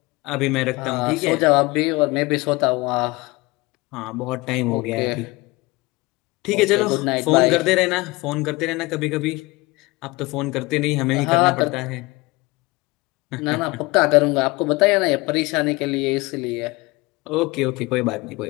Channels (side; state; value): right; quieter; 23.1 dB